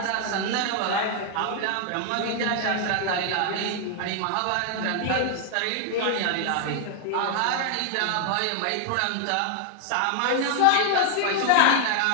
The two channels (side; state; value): both; different; correlation 0.00